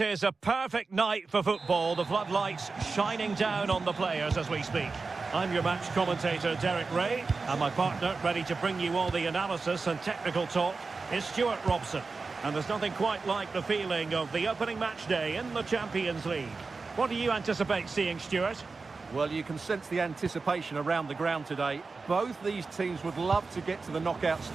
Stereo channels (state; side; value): quieter; left; 4.2 dB